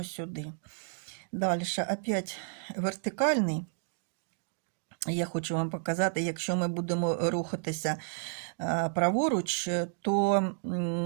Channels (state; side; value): silent; left; digital silence